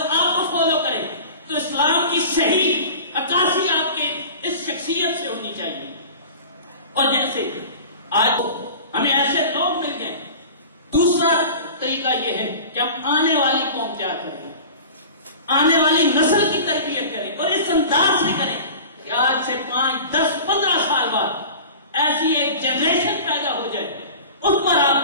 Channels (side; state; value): both; inverted; correlation -0.38